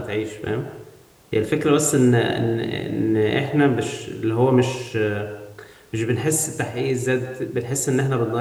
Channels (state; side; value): identical; both; correlation 1.00